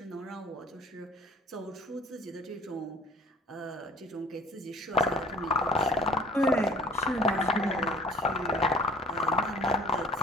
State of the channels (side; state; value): both; normal; correlation 0.50